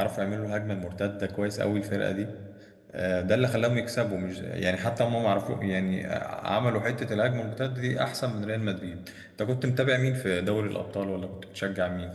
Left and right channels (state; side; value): identical; both; correlation 1.00